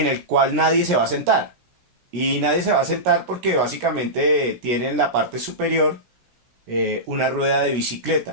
el cual nadie se va a sentar. Y nadie se va a sentar porque básicamente tiene en la parte superior una rueda de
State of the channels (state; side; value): late; left; 16 ms